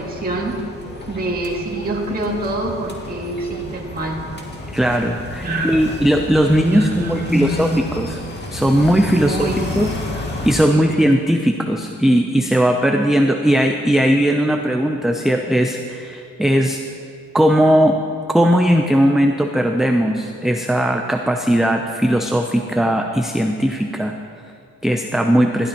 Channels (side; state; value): both; normal; correlation 0.85